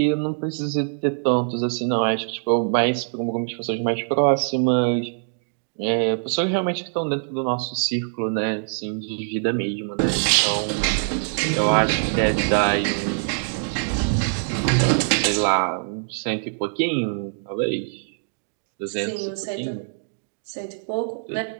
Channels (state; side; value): silent; left; digital silence